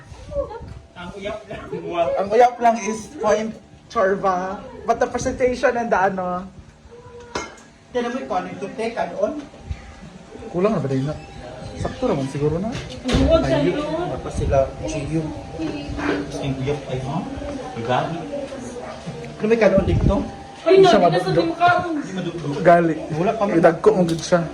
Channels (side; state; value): both; identical; correlation 1.00